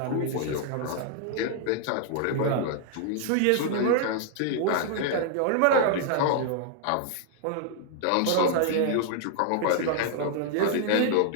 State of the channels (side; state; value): both; different; correlation -0.01